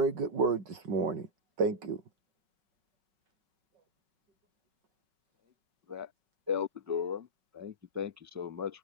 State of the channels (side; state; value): left; late; 5.3 ms